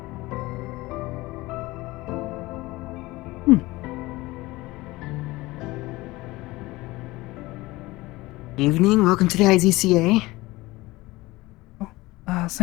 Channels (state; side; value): quieter; right; 20.2 dB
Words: Evening, welcome to the IZCA.